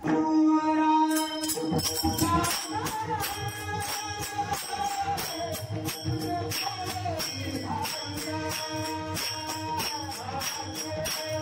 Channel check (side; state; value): both; identical; correlation 1.00